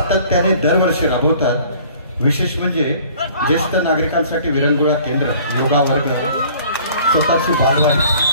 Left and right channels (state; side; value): inverted; both; correlation -0.52